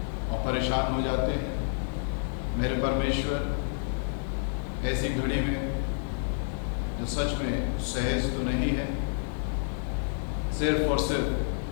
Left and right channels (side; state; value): right; silent; 58 dB below the other